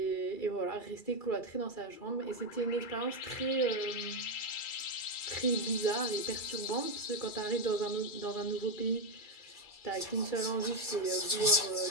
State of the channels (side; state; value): right; late; 2.3 ms